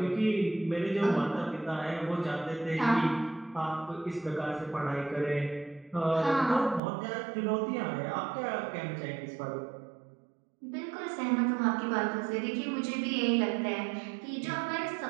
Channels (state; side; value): drops out; left; at 6.8 s